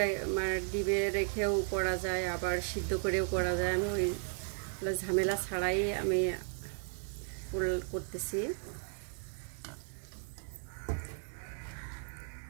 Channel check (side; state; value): left; silent; 54 dB below the other